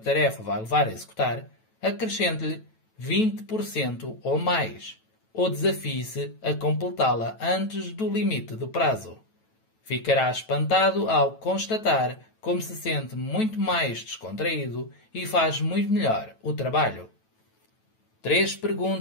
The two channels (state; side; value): late; right; 9.1 ms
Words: vai levar a executar, acrescente-lhe 20% ou mais, ou desafie-se a completá-la antes do limite do prazo. Ficará espantado ao constatar como se sente muito mais descontraído e faz muito melhor o trabalho. 3